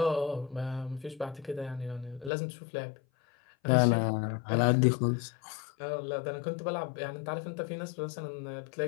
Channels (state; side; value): drops out; right; at 2.3 s